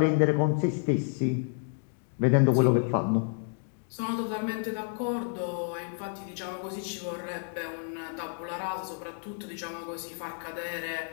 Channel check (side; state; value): right; silent; 58 dB below the other